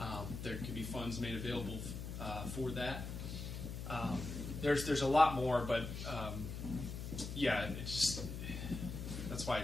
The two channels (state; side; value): noise; left; hum, 7 dB below the sound